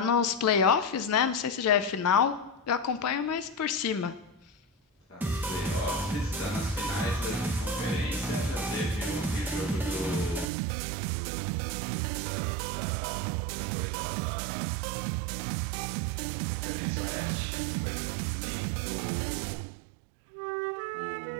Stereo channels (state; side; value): drops out; left; at 10.5 s